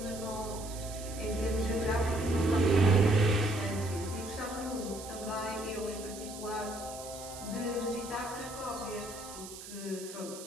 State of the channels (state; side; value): noise; right; hiss, 13 dB below the sound